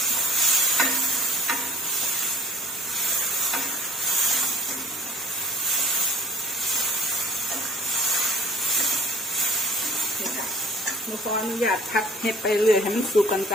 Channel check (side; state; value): both; normal; correlation 0.51